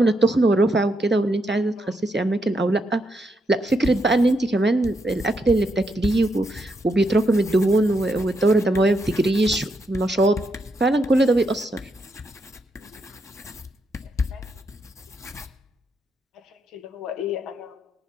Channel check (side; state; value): both; normal; correlation 0.80